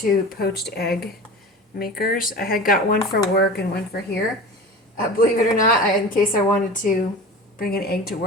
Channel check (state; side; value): normal; both; correlation 0.34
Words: poached egg makers. I had got one for work and one for here. Believe it or not, in case I wanted to bring an egg to